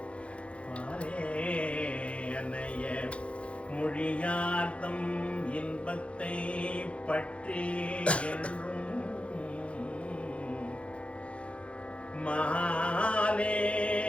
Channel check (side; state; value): right; late; 0.061 ms